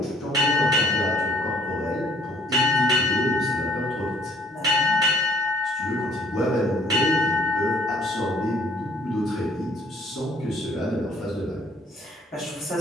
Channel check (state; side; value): normal; both; correlation 0.59